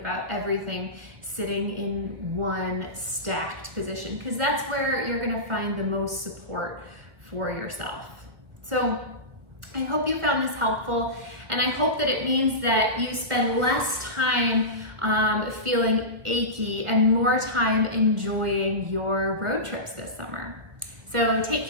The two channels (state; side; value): late; left; 1.2 ms